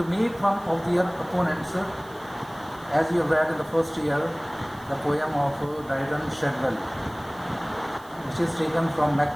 make fun of their opponents. As you have read in the first year, the poem of Dryden, Shadwell, which is taken from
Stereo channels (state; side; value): noise; right; hiss, 24 dB below the sound